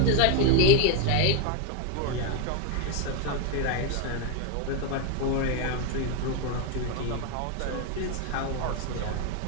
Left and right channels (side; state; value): both; different; correlation 0.01